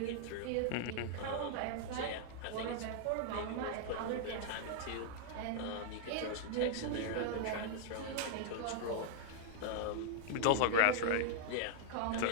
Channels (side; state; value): both; different; correlation -0.01